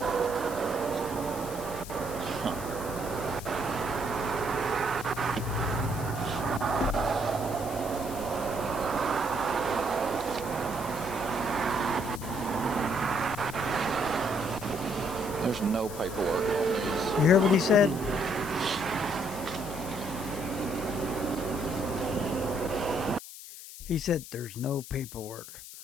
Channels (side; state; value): left; noise; hiss, 13 dB below the sound